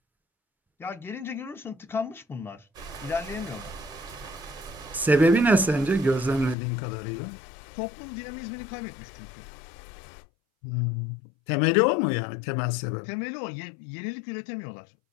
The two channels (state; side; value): drops out; right; at 6.6 s